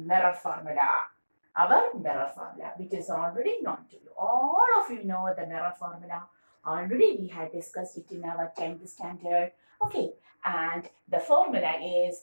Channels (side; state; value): both; inverted; correlation -1.00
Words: formula, our mirror formula, which is already known to you. All of you know the mirror formula. Already we had discussed it in our 10th standard. Okay, and the formula is